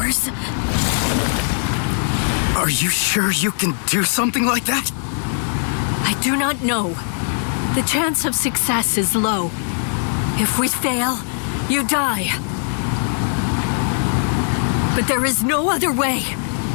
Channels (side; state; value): right; silent; digital silence